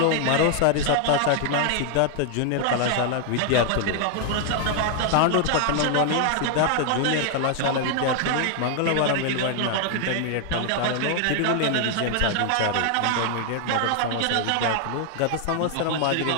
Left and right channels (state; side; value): different; both; correlation 0.00